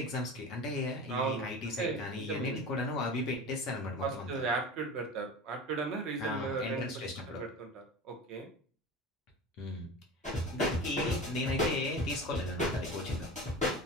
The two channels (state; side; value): normal; both; correlation 0.32